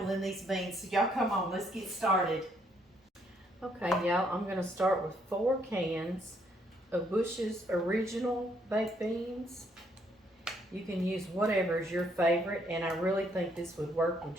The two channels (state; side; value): normal; both; correlation 0.70